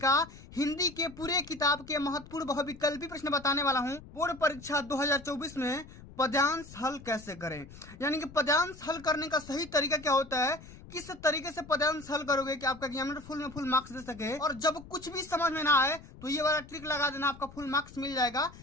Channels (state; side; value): noise; left; rumble, 18 dB below the sound